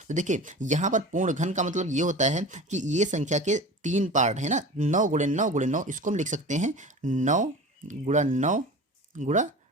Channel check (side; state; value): both; normal; correlation 0.35